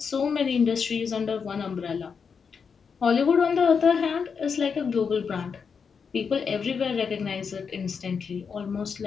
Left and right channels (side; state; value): right; quieter; 6.0 dB